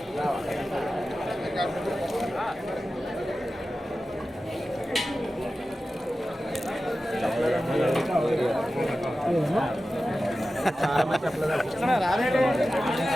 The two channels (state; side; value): normal; both; correlation 0.94